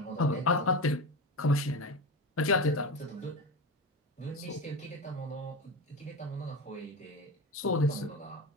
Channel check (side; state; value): both; normal; correlation 0.24